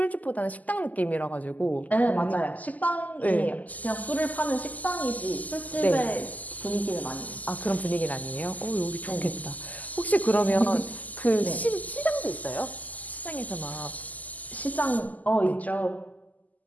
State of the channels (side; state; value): right; late; 0.079 ms